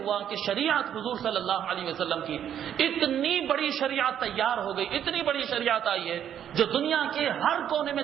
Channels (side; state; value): left; quieter; 9.7 dB